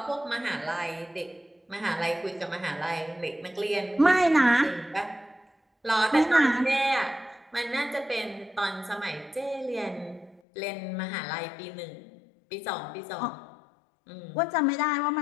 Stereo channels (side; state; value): right; drops out; at 10.4 s